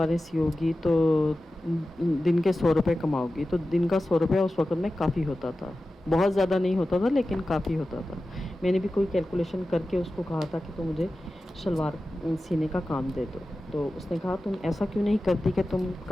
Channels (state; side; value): normal; both; correlation 0.94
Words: سیو گی تو دن کے 100 روپے کماؤ گی. تو دن کا 100 روپیہ اس وقت میں کافی ہوتا تھا. بہت زیادہ نہیں ہوتا تھا لیکن کافی ہوتا تھا. میں نے بھی کوئی کیلکولیشن کر کے اس کو کہا تھا کہ تم مجھے شلوار سینے کا کام دے دو. تو اس نے کہا تم ایسا کیوں نہیں کرتی کہ تم